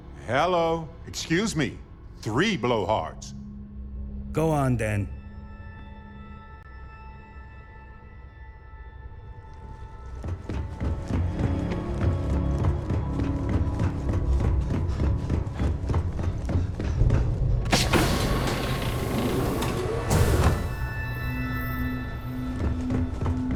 Hello. Excuse me. 3 blowhards. Go on then.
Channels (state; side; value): identical; both; correlation 1.00